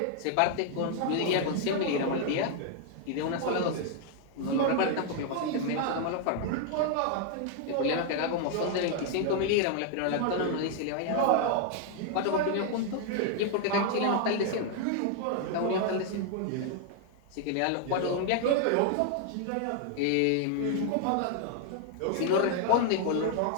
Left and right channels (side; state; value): both; different; correlation 0.00